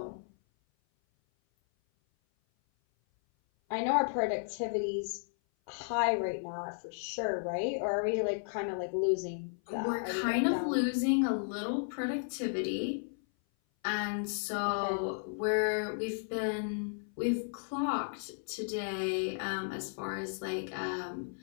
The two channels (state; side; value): silent; right; 55 dB below the other